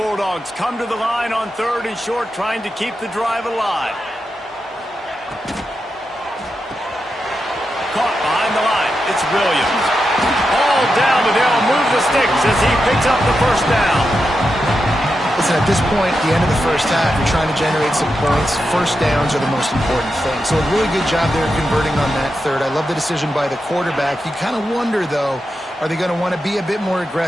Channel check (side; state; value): both; normal; correlation 0.88